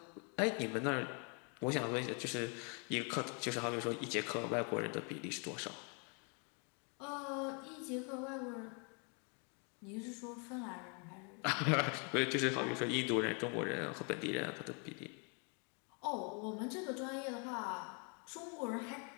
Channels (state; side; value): quieter; right; 36.8 dB